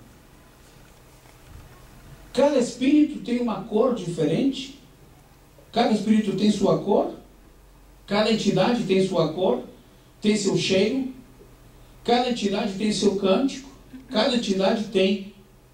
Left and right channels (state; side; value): identical; both; correlation 1.00